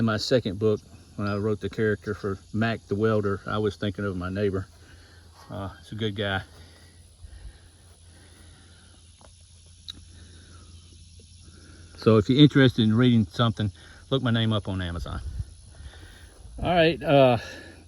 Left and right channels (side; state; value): both; identical; correlation 1.00